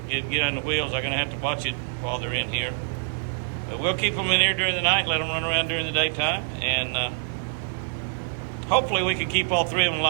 get on the wheels. I'm going to have to watch it while they're in here. But we'll keep them in here during the night, let them run around during the daytime, and hopefully we can keep all 3 of them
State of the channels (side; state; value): left; silent; 59 dB below the other